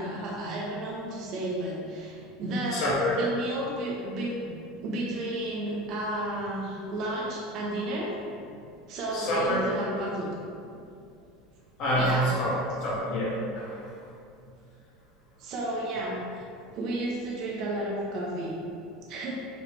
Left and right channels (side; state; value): both; normal; correlation 0.33